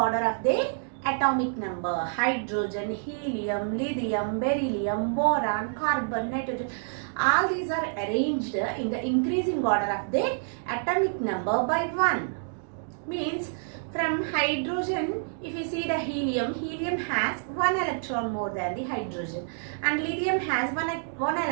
of their atomic number. Hydrogen, helium, lithium, beryllium, boron, carbon, nitrogen. All these are arranged in the increasing order of their atomic number by 1. Means from hydrogen, if you see the helium has 1 electron more than the hydrogen, and lithium has one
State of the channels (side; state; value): left; silent; digital silence